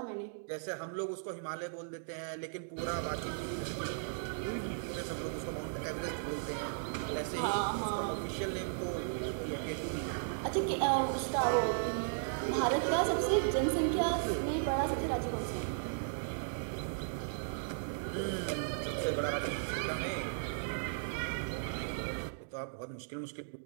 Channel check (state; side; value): silent; left; digital silence